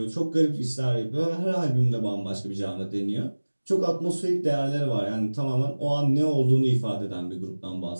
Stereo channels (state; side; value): inverted; both; correlation -1.00